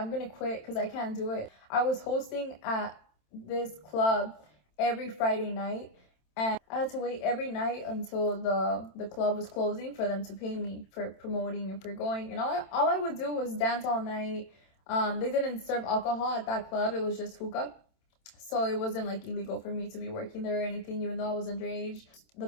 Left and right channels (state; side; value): late; right; 27 ms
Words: gonna quit because I can't do it. I was hosting at this club every Friday night, and I had to wait every night until the club was closing for them to pay me for promoting and for going. And all I would do was dance all night. They didn't serve alcohol at that club. It was just hookah. So it wasn't like illegal for me to be working there or anything, even though I was underage. The